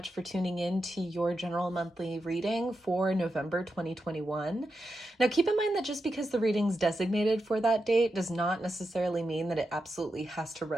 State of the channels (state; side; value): normal; both; correlation 0.88